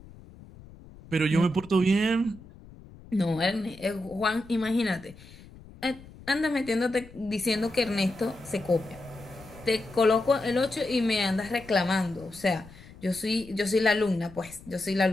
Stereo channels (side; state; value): left; noise; rumble, 20 dB below the sound